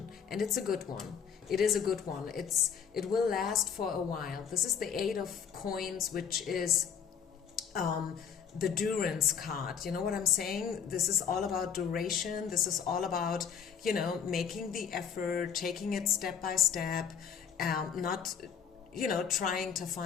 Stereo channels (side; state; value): right; quieter; 7.4 dB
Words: and it's a good one. It is a good one. It will last for a while. This is the Eight of Coins, which is the Durance card. You know what I'm saying? This is all about duration. This is all about, making the effort, taking it step by step, not, trying to